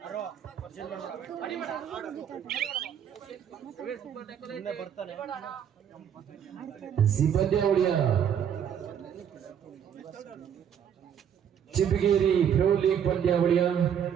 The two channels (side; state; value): left; quieter; 8.7 dB